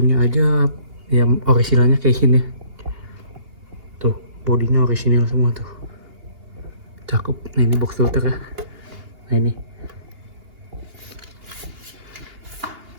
aja yang originalnya kayak gini. Tuh, bodinya original semua tuh. Cakep. Nah ini box filter ya. Nah ini.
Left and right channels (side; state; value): left; late; 2.8 ms